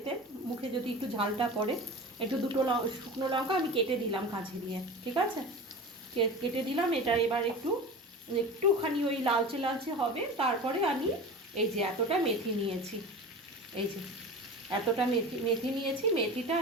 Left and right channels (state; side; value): normal; both; correlation 0.33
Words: মুখে যদি একটু ঝালটা পড়ে। একটু দুটো শুকনো লঙ্কা আমি কেটে দিলাম কাঁচি দিয়ে, ঠিক আছে? কেটে দিলাম। এটা এবার একটুখানি ওই লালচে লালচে হবে, তারপরে আমি এই যে এতটা মেথি নিয়েছি, এই যে এতটা মেথি নিয়েছি, মেথিটা